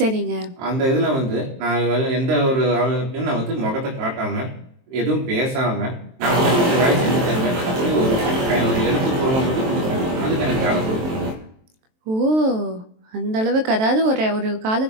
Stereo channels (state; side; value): late; left; 23 ms